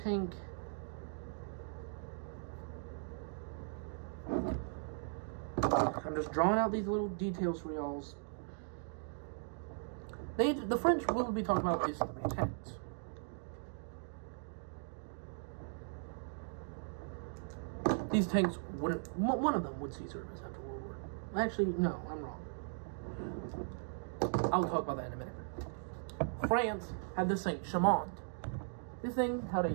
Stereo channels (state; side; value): silent; left; digital silence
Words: I'm just drawing out these little details for y'all. The French we'll be talking about is 3 tanks. These tanks wouldn't, one of them would see service after World War. Actually, no, I'm wrong. I'll talk about that in a minute. France had the Saint Chamond. This thing had a